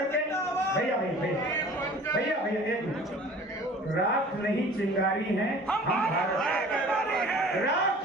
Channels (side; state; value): both; normal; correlation 0.46